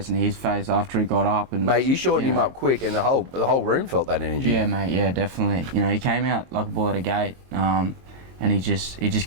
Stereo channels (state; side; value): late; left; 22 ms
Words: and his face after he got up. And mate, you shortened him up quick, and the whole room felt that energy. Yeah, mate. Yeah, definitely. You know, he came out like a bull at a gate, and he just